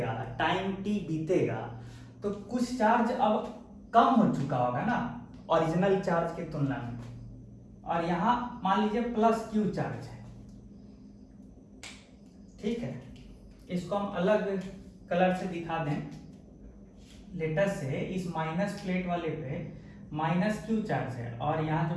टाइम t बीतेगा, तो कुछ चार्ज अब कम हो चुका होगा ना ओरिजिनल चार्ज की तुलना में, और यहां मान लीजिए प्लस क्यू चार्ज है, ठीक है। इसको हम अलग कलर से दिखा दें, लेटर से इस माइनस प्लेट वाले पे माइनस क्यू चार्ज है, और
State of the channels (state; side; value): identical; both; correlation 1.00